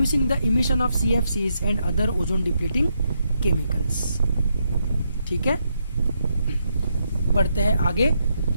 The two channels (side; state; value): both; inverted; correlation -0.79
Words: the emission of CFCs and other ozone depleting chemicals. ठीक है, बढ़ते हैं आगे।